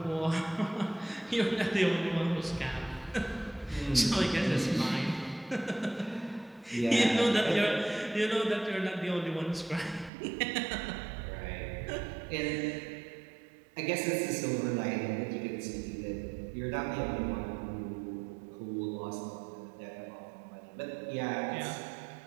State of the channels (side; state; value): left; drops out; at 10.1 s